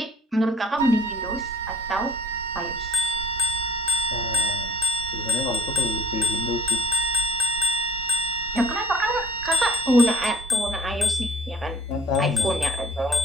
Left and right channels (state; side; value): normal; both; correlation 0.56